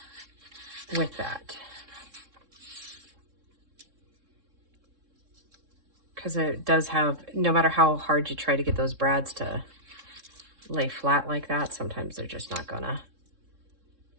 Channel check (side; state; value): left; late; 3.7 ms